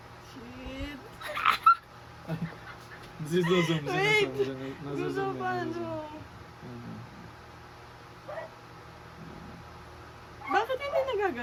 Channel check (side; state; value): both; identical; correlation 1.00